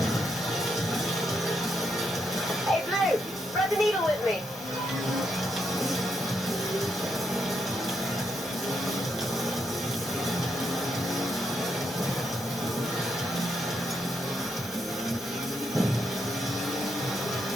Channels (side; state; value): both; normal; correlation 0.79